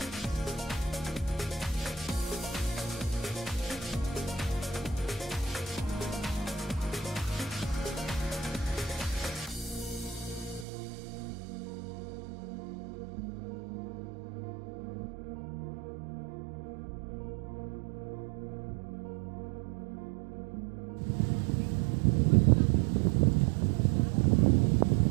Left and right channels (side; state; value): left; drops out; at 10.7 s